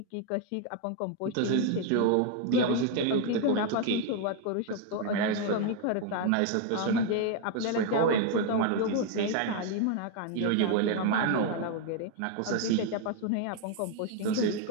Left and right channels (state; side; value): different; both; correlation 0.00